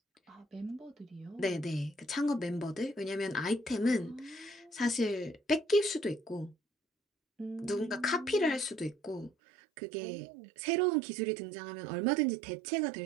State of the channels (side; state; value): left; drops out; at 9.3 s